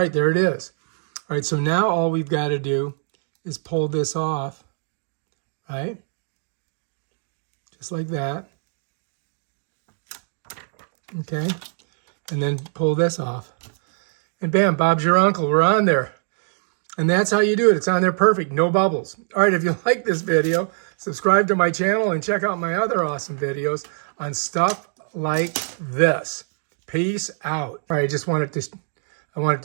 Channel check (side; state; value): left; silent; digital silence